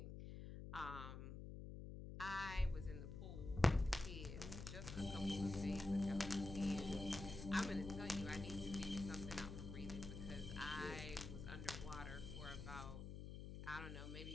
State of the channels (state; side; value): noise; left; hum, 7 dB below the sound